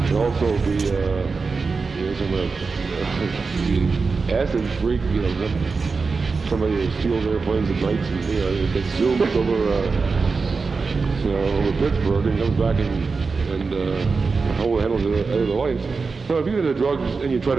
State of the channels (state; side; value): quieter; left; 4.5 dB